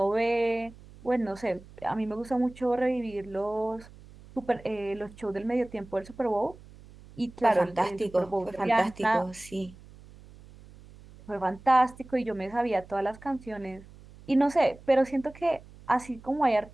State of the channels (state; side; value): noise; right; hum, 21 dB below the sound